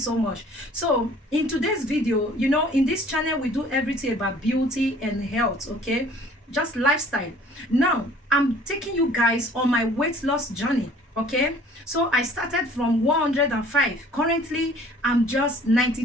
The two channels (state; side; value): normal; both; correlation 0.53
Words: much. So in today's video, you know, in this channel we do everything about beauty and health, okay, just lifestyle. Now I'm taking you guys on my weight loss journey. Okay, so I started from 105. Currently I'm just